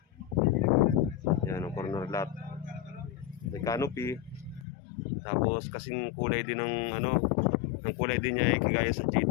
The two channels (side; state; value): right; drops out; at 4.7 s